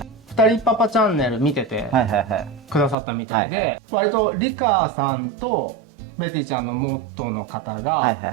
二人パパチャンネル見ててくださったみたいで、割とリカさんとベティちゃんの元の方が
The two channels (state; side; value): drops out; left; at 3.0 s